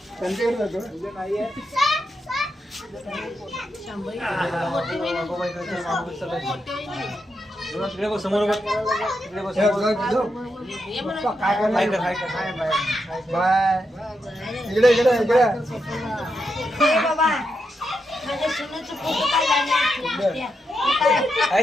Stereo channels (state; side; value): normal; both; correlation 0.84